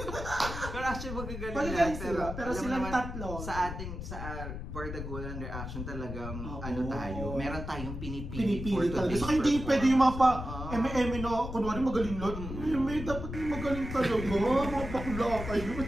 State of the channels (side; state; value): left; noise; rumble, 7 dB below the sound